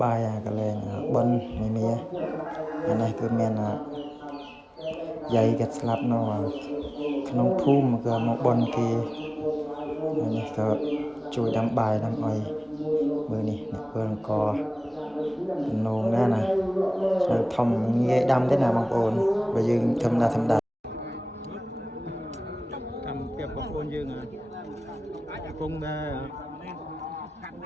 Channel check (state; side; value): normal; both; correlation 0.98